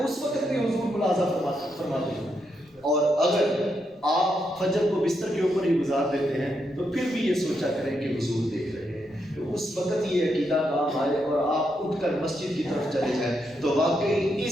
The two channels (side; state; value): both; normal; correlation 0.81